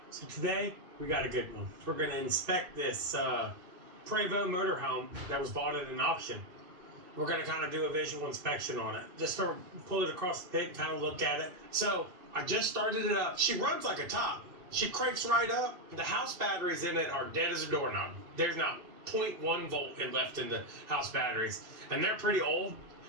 so today we got a good one. We're going to inspect this Prevost motorhome that was bought at an auction. We're going to kind of do a visual inspection on it. Just to pull it across the pit and kind of look at it. So I just started it up. She runs like a top. She cranks right up. The house batteries in it are dead as a doorknob. There's not 0.1 volt left in the house batteries. And they're pretty old.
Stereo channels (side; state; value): left; late; 2.7 ms